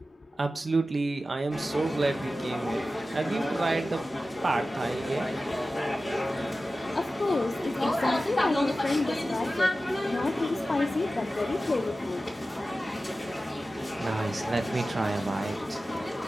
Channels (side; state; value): both; normal; correlation 0.95